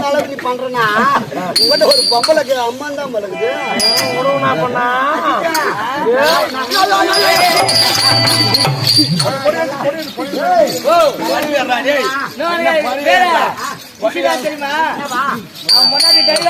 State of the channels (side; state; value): both; identical; correlation 1.00